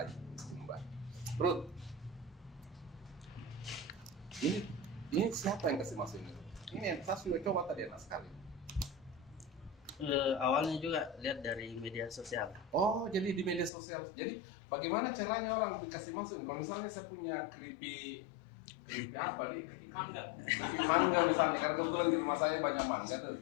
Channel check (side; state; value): right; drops out; at 13.7 s